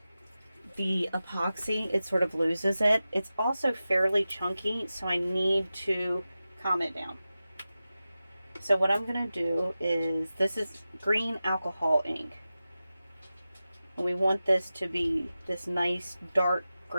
the epoxy, it sort of loses it. It's also fairly chunky, so I need to calm it down. So what I'm going to do is, this is green alcohol ink. And we want this to be this nice dark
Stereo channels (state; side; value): inverted; both; correlation -0.94